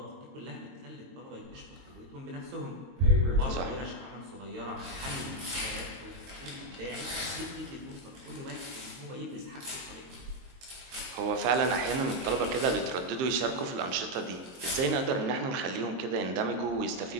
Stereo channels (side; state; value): left; late; 22 ms